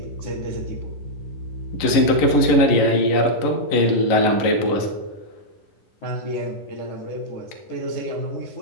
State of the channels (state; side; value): late; right; 11 ms